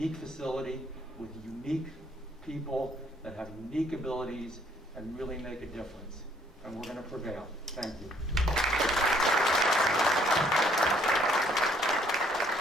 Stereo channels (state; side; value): normal; both; correlation 0.64